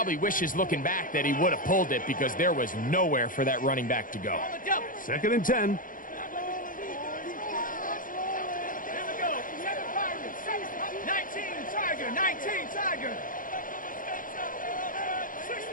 wishes looking back that he would have pulled it because there was nowhere for that running back to go. 2nd and 10.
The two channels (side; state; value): right; late; 0.40 ms